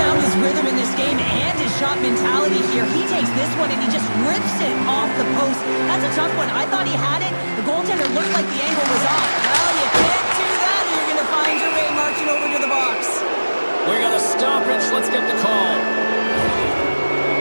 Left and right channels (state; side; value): inverted; both; correlation -1.00